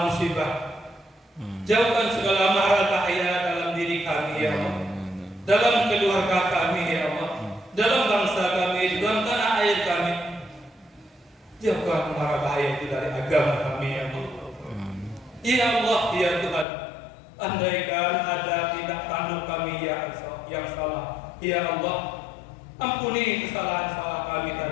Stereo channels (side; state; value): right; drops out; at 16.7 s